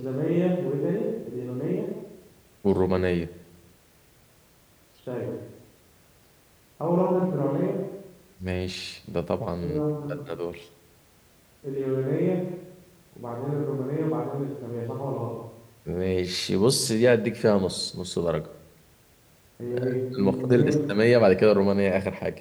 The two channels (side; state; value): both; identical; correlation 1.00